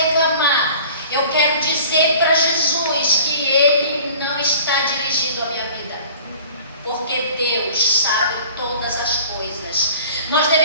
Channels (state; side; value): inverted; both; correlation -0.46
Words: eu quero dizer para Jesus que Ele não está dirigindo a minha vida, porque Deus sabe todas as coisas. Nós